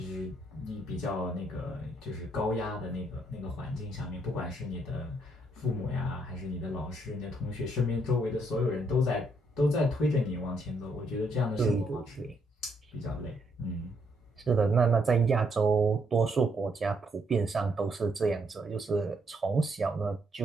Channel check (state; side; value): normal; both; correlation 0.73